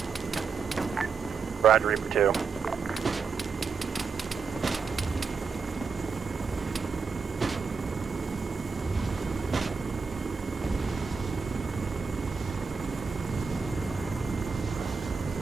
Roger, Reaper 2.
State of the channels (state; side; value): quieter; left; 5.2 dB